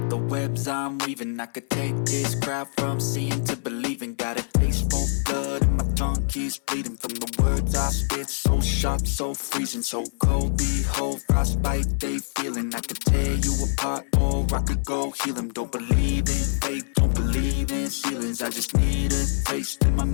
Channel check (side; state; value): right; silent; 62 dB below the other